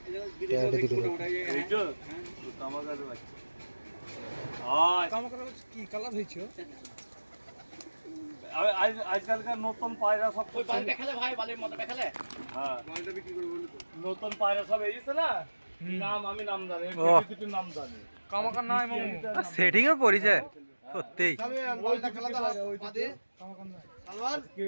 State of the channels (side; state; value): both; inverted; correlation -1.00